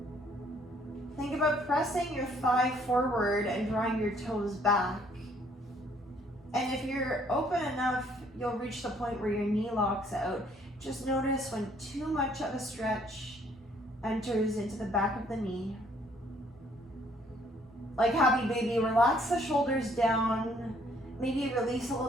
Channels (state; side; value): normal; both; correlation 0.64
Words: Think about pressing your thigh forward and drawing your toes back. And if you're open enough, you'll reach the point where your knee locks out. Just notice when too much of a stretch enters into the back of the knee. Like happy baby, relax the shoulders down. Maybe release a